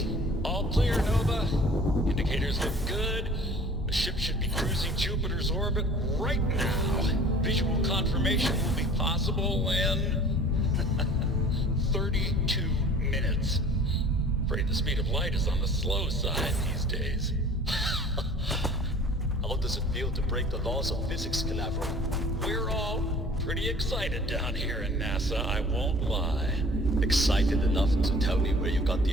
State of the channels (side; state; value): both; normal; correlation 0.47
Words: All clear, Nova. Indicators look good. The ship should be cruising Jupiter's orbit right now. Visual confirmation will be possible in 32 minutes. Afraid the speed of light is on the slow side these days. How does it feel to break the laws of physics, Canaveral? We're all pretty excited down here in NASA, I won't lie. Excited enough to tell me where you got